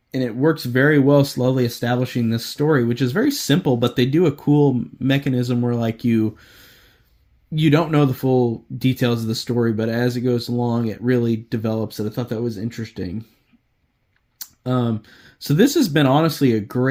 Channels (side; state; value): both; identical; correlation 1.00